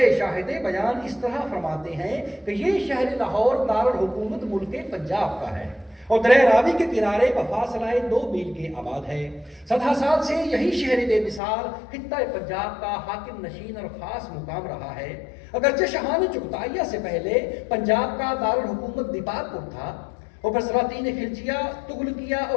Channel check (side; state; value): right; drops out; at 11.4 s